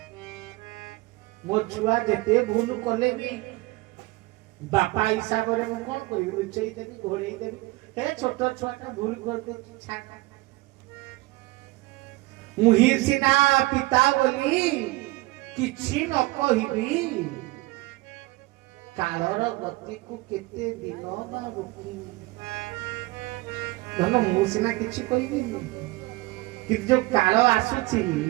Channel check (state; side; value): quieter; left; 21.2 dB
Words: ମୋ ଛୁଆ ଯେତେ ଭୁଲ କଲେ ବି ବାପା ହିସାବରେ ମୁଁ କଣ କରିବି ଲୁଚେଇ ଦେବି ଘୋଡେଇ ଦେବି ଏ ଛୋଟ ଛୁଆଟା ଭୁଲ କରିଦେଉଛି ଛାଡ ମୁହିଁ ସିନା ପିତା ବୋଲି କିଛି ନ କହିବି କାଳର ଗତିକୁ କେତେ ଦିନ ବା ରୋକିବି ଧନ ମୁଁ ସିନା କିଛି କହିବିନି କିନ୍ତୁ ଯୋଉ କାଳ ଆସୁଛି